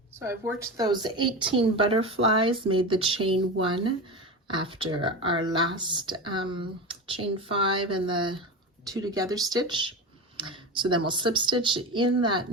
So I've worked those 18 butterflies, made the chain 1 after our last chain 5 and the 2 together stitch. So then we'll slip stitch in that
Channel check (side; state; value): both; normal; correlation 0.24